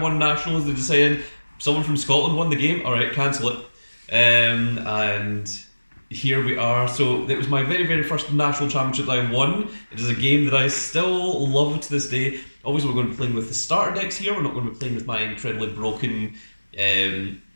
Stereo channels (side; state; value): both; inverted; correlation -1.00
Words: nationals they decided someone from Scotland won the game, alright, cancel it. And here we are. So it was my very first national championship that I won. It is a game that I still love to this day. Obviously we're going to be playing with the starter decks here, we're not going to be playing with my incredibly broken